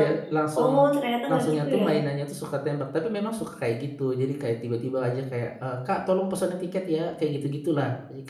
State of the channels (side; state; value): both; identical; correlation 1.00